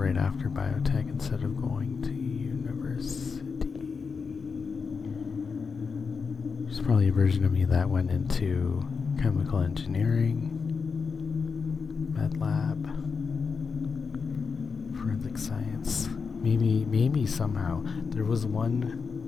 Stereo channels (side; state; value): right; quieter; 5.3 dB